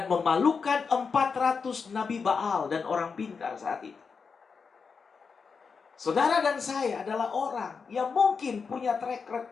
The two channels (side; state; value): right; quieter; 5.4 dB